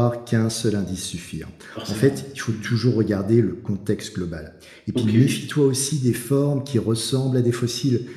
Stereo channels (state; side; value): identical; both; correlation 1.00